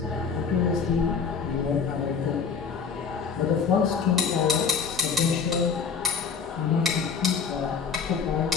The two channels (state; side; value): quieter; right; 6.0 dB